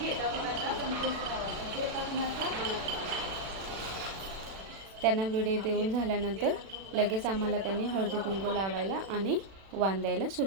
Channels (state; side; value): late; left; 36 ms